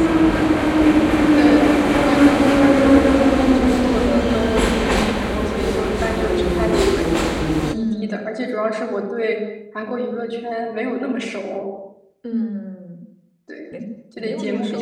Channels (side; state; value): both; identical; correlation 1.00